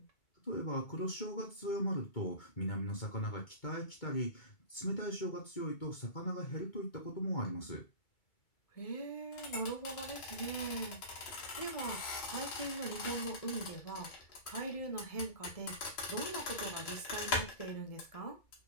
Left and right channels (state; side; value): late; right; 2.3 ms